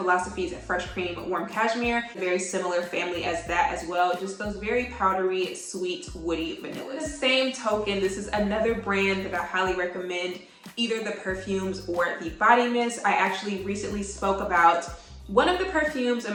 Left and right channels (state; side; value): identical; both; correlation 1.00